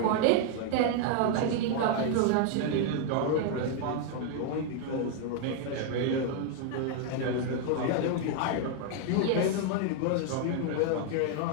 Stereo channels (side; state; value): both; different; correlation 0.00